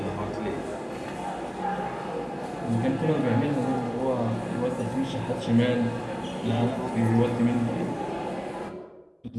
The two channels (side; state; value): both; identical; correlation 1.00